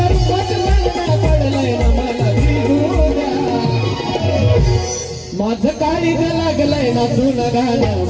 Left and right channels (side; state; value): both; identical; correlation 1.00